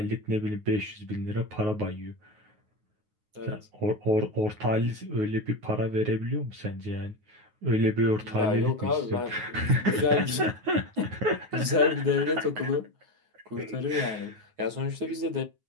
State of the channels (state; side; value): late; left; 9.5 ms